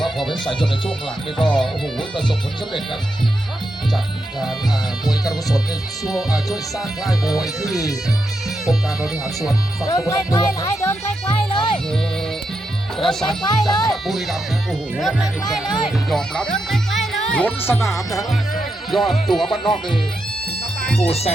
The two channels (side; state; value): both; normal; correlation 0.85